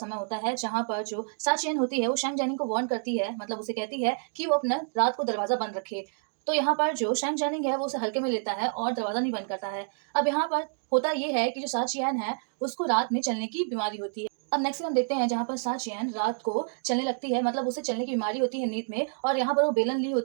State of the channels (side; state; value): left; silent; digital silence